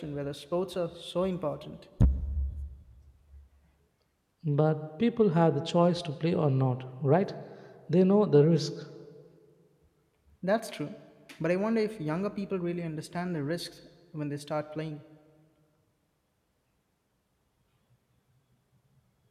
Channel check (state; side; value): identical; both; correlation 1.00